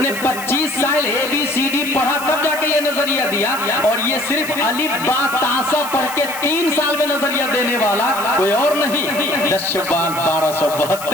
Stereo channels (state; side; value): noise; left; hiss, 12 dB below the sound